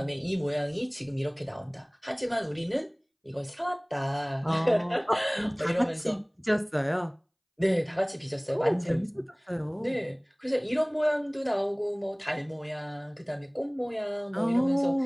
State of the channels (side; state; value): both; identical; correlation 1.00